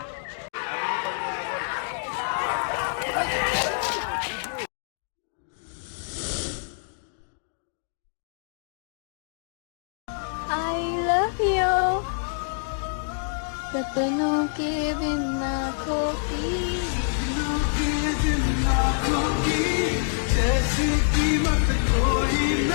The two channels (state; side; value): silent; right; digital silence